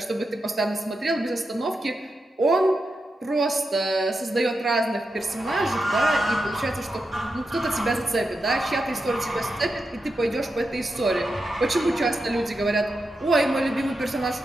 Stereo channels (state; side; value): normal; both; correlation 0.88